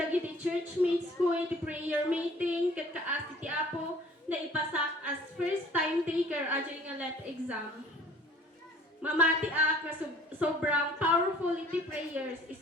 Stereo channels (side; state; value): both; normal; correlation 0.51